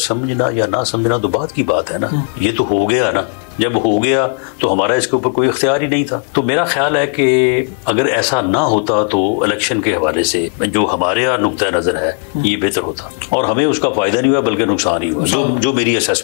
समझना या ना समझना तो बात की बात है ना। ये तो हो गया ना, जब हो गया तो हमारा इसके ऊपर कोई इख्तियार ही नहीं था। तो मेरा ख्याल है कि अगर ऐसा ना होता तो इलेक्शन के हवाले से जो हमारे यहाँ नुक्ता नजर है ये बेहतर होता और हमें उसका फायदा नहीं हुआ बल्कि नुकसान ही हुआ, जो मेरी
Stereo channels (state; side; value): quieter; right; 39.6 dB